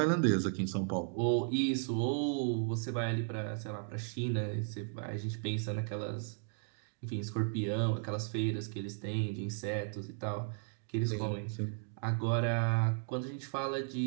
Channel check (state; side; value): silent; left; digital silence